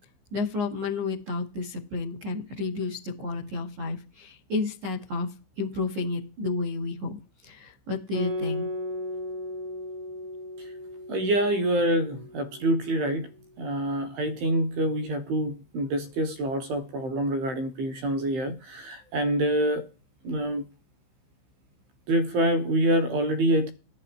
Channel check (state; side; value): late; left; 15 ms